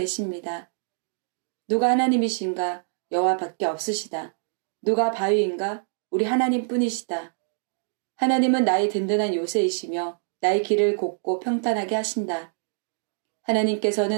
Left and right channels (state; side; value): silent; left; digital silence